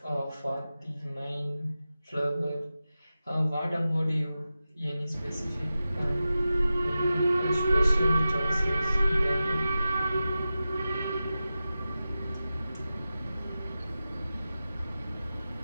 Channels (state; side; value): inverted; both; correlation -0.94